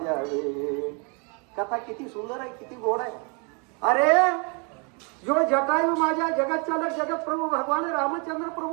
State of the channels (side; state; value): left; quieter; 34.1 dB